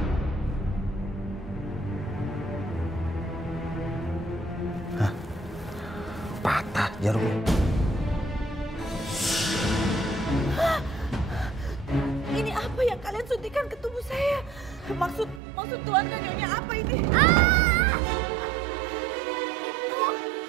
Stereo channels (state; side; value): drops out; left; at 15.4 s